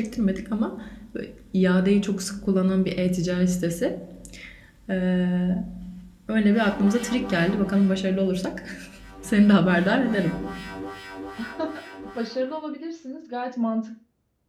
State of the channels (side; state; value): both; identical; correlation 1.00